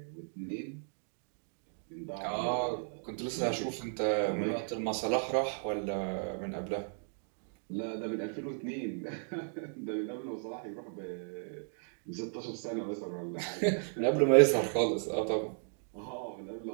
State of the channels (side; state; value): left; silent; digital silence